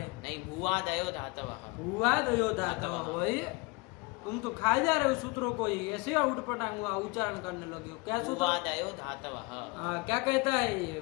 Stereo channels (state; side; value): quieter; right; 26.9 dB